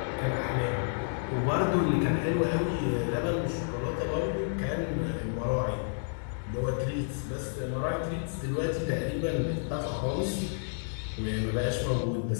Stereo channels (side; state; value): right; silent; digital silence